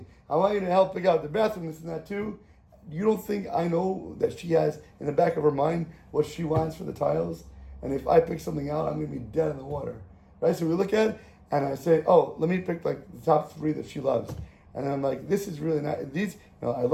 I want you to help pick out the bathroom, this and that too. You don't think I know that she has in the back of her mind what she wants for the tiles? And if I pick something out, I'm going to be dead in the water. Right? So we look at it, and I say, oh, let me pick like the top 3 that she loves. And I'm like, this is really nice. These, I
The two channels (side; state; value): both; identical; correlation 1.00